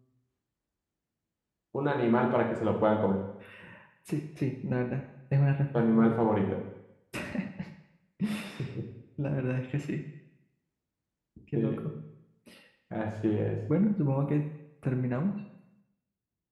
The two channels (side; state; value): both; identical; correlation 1.00